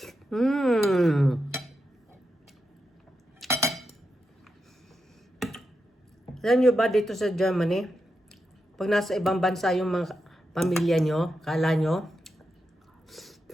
Alam nyo ba dito sa Germany, pag nasa ibang bansa yung mga pamilya nyo, kala nyo,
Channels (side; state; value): both; normal; correlation 0.87